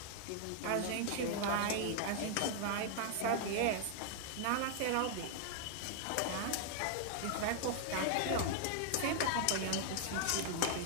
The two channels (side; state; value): both; different; correlation 0.00